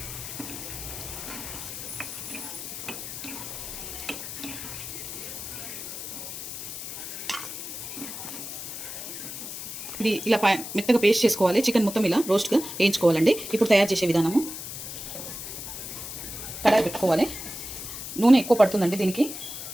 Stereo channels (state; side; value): noise; left; hiss, 8 dB below the sound